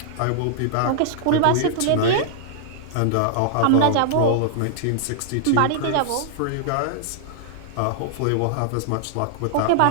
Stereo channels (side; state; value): both; different; correlation -0.01